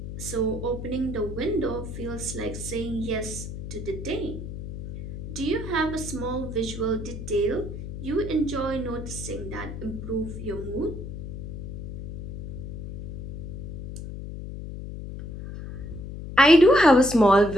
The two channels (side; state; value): left; noise; hum, 8 dB below the sound